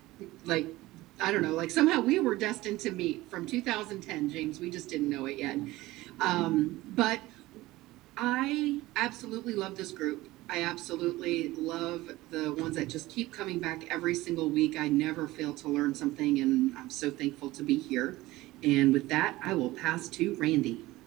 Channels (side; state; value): left; quieter; 18.4 dB